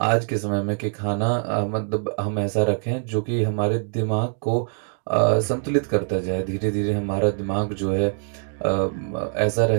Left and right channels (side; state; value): left; silent; digital silence